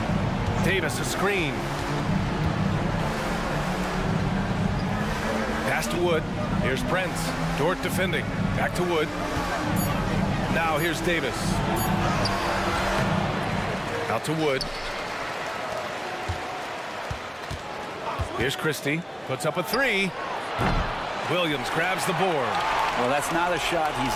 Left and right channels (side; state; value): both; identical; correlation 1.00